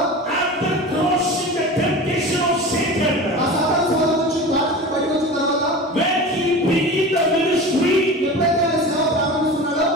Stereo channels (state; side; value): normal; both; correlation 0.32